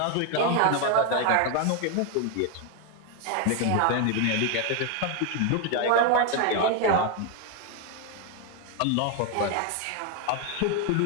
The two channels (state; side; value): different; both; correlation 0.01